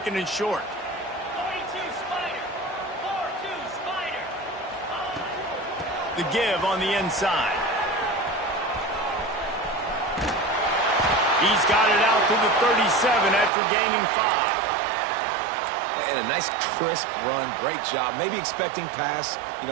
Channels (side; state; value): left; drops out; at 13.5 s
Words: and short. 42 Spider. 4-2 Spider. The give on the inside. He's got it out to the 37 after gaining 5. And a nice crisp run. Great job. Maybe expecting pass,